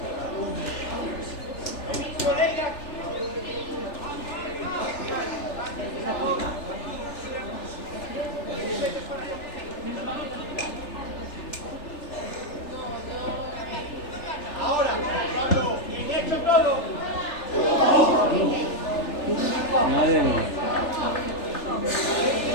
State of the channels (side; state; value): right; late; 3.4 ms